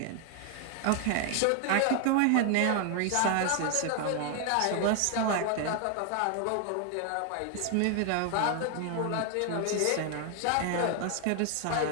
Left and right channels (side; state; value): both; different; correlation 0.00